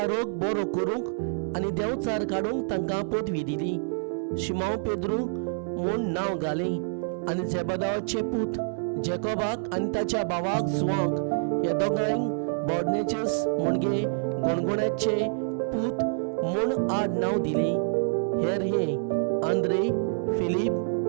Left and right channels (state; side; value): silent; left; 60 dB below the other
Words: रोग बरो करूंक आनी देंवचार काडूंक तांकां पदवी दिली. शिमोन पेद्रू म्हूण नांव घालें आनी जेबेदावाचे पूत जेकोबाक आनी ताच्या भावाक जुआंक ह्या दोगांयक बोअनेर्जेस म्हणजे गणगोण्याचे पूत म्हूण आड नांव दिलें. हेर हे आंद्रे, फिलीप,